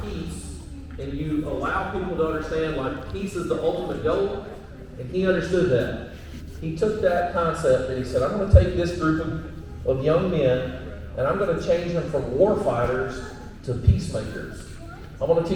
peace, and you allow people to understand, like, peace is the ultimate goal, and he understood that. He took that concept and he said, I'm going to take this group of young men, and I'm going to change them from war fighters to peacemakers. I want to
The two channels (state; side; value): identical; both; correlation 1.00